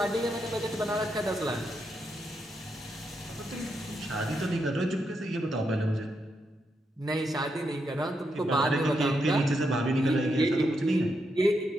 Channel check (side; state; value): both; normal; correlation 0.82